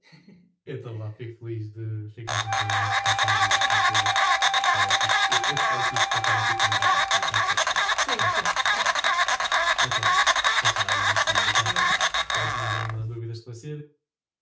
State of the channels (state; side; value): identical; both; correlation 1.00